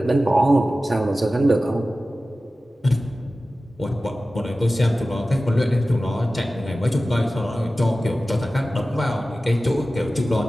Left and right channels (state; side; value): normal; both; correlation 0.95